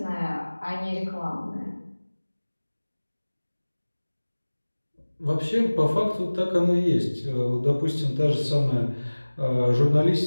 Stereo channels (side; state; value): both; inverted; correlation -1.00